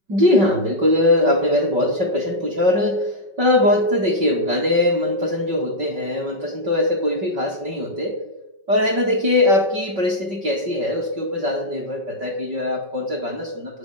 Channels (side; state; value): left; late; 5.3 ms